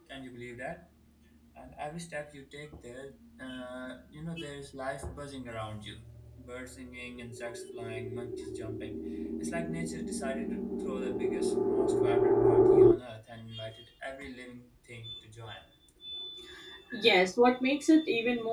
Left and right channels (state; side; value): identical; both; correlation 1.00